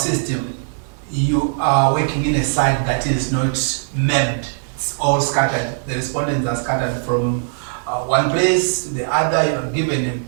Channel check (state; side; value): silent; left; digital silence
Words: you are working in a site that is not mapped. It's all scattered. The respondents are scattered from one place to the other. You are given